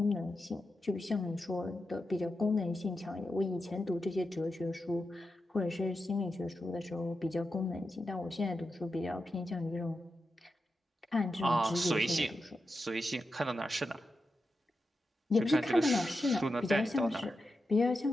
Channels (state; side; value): normal; both; correlation 0.89